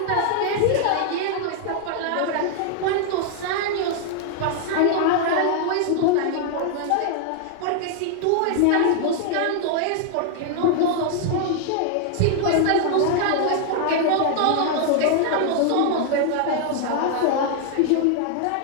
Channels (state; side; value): different; both; correlation 0.00